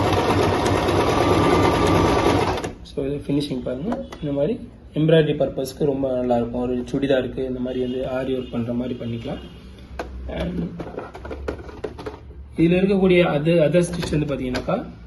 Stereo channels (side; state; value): both; identical; correlation 1.00